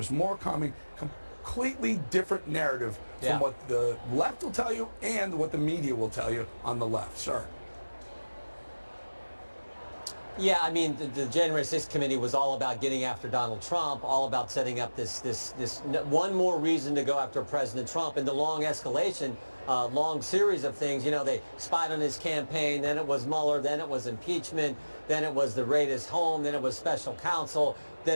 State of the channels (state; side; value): inverted; both; correlation -1.00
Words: completely different narrative from what the left will tell you and what the media will tell you on the left, sir. Yeah, I mean, the January 6th committee was all about getting after Donald Trump, all about setting up this one more reason to go after President Trump, and the long escalation, long series of things. You know, they spied on his campaign, then it was Mueller, then it was impeachment, then it was the raid his home, then it was special counsel, then